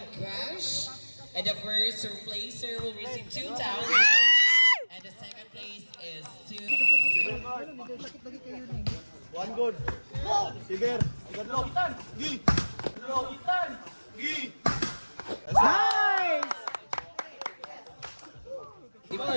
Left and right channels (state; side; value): inverted; both; correlation -1.00